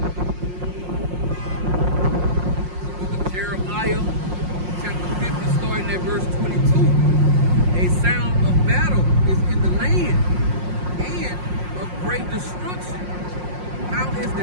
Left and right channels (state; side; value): late; left; 5.6 ms